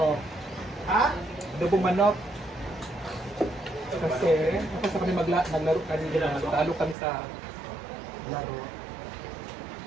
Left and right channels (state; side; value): drops out; left; at 7.0 s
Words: Ha? Adobong manok. Kasi, kapag kami naglaro kanina, talo kami sa laro.